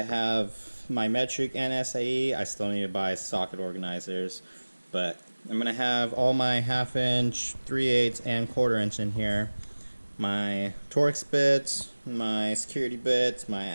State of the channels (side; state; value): both; inverted; correlation -1.00